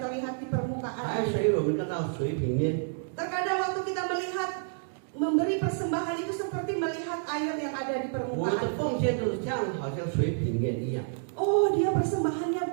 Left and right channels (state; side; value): silent; left; digital silence